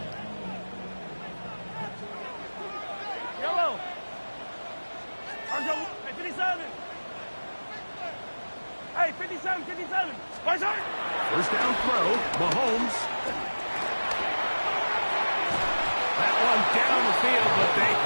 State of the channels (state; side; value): inverted; both; correlation -1.00